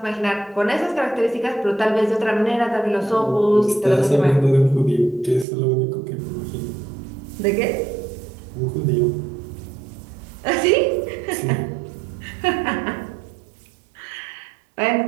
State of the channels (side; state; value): left; drops out; at 5.5 s